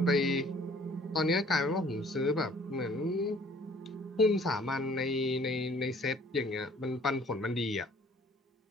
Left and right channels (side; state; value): both; normal; correlation 0.56